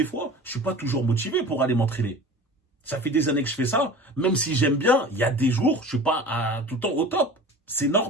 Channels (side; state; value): both; normal; correlation 0.38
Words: fois, je suis pas toujours motivé pour aller m'entraîner. Ça fait des années que je fais ça. Même si j'aime bien, il y a des jours, je suis pas tout le temps au top. C'est